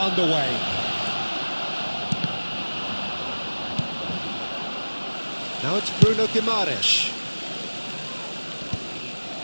Now it's Bruno Guimaraes.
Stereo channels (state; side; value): inverted; both; correlation -1.00